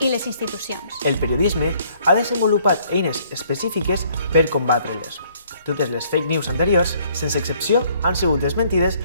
les institucions. El periodisme ha desenvolupat eines específiques per combatre-les. Totes les fake news anteriors, sense excepció, han sigut desmentides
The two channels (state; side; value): inverted; both; correlation -0.63